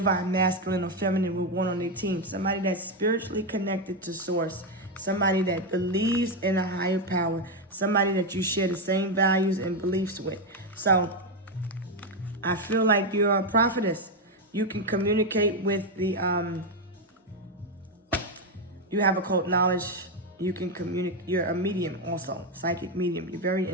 masculine or feminine would want on their team. Somebody that's spiritually connected to Source. Somebody that believes in a higher power. Somebody that you share the same values and beliefs with. So I feel like you're a prophetess. You can communicate with the, you have occult knowledge. You can communicate. You're a medium also, psychic medium. You're very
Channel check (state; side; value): normal; both; correlation 0.06